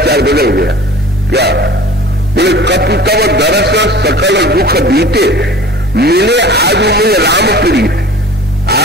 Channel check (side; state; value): both; normal; correlation 0.43